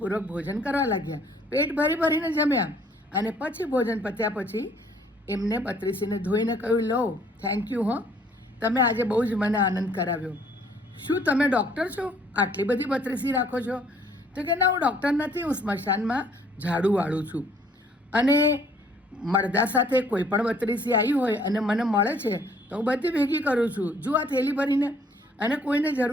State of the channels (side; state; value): both; normal; correlation 0.60